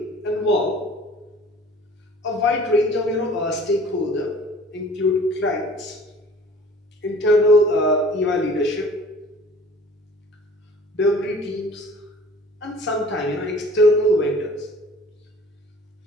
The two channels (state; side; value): normal; both; correlation 0.48